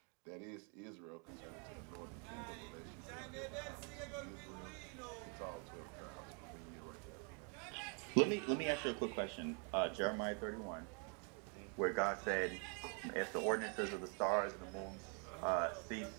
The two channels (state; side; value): quieter; left; 39.0 dB